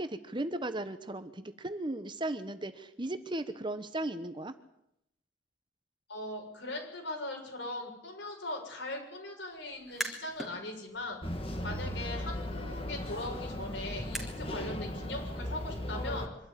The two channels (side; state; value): both; normal; correlation 0.41